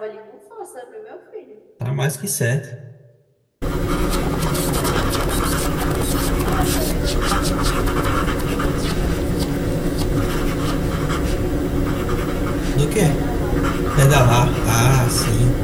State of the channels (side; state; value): both; identical; correlation 1.00